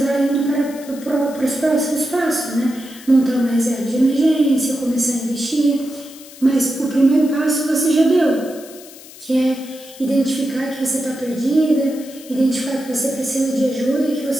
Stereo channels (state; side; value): noise; left; hiss, 19 dB below the sound